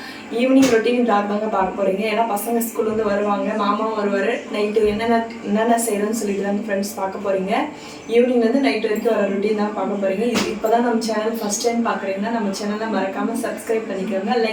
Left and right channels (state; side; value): identical; both; correlation 1.00